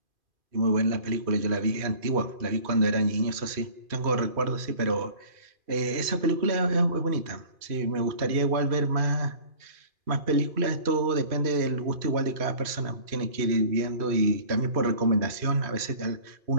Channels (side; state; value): left; late; 2.5 ms